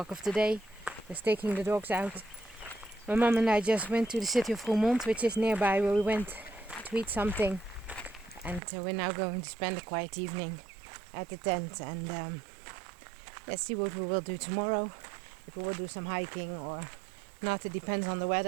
of the day. Just taking the dogs out. My mom and I just went to the city of Roermond, which is nearby, where we went to eat something. And we're now going to spend a quiet evening at the tent. And let's see what we will do tomorrow. If we will do some hiking or not, it depends on the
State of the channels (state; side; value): drops out; left; at 8.6 s